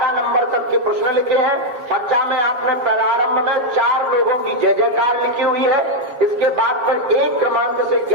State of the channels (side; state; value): left; late; 7.3 ms